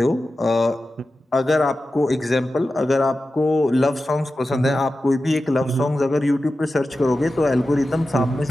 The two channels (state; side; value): normal; both; correlation 0.93